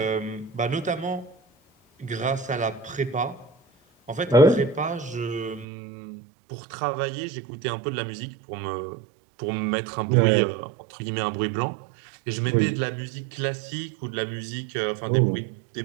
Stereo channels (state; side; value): drops out; left; at 5.7 s